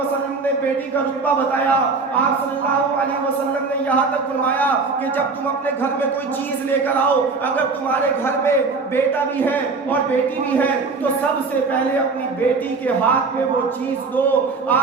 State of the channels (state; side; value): quieter; left; 4.3 dB